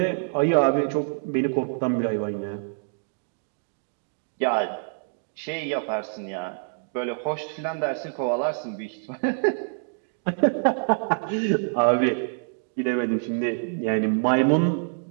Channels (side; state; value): left; silent; digital silence